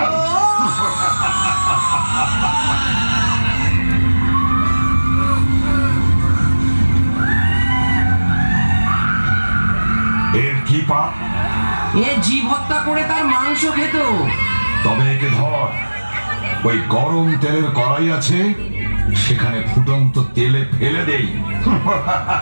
এর কি পাপ? এ জীব হত্যা করে তার মাংস খেত। তবে একে ধর, ওই গরম তেলের কড়াই আছে, সেখানে ফুটন্ত তেলে ফেলে দেই।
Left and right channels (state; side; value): inverted; both; correlation -1.00